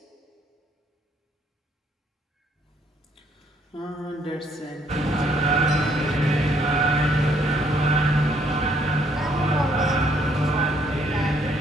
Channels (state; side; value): normal; both; correlation 0.67